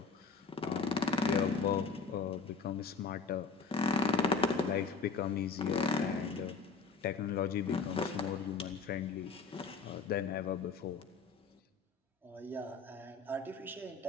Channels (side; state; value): right; quieter; 5.0 dB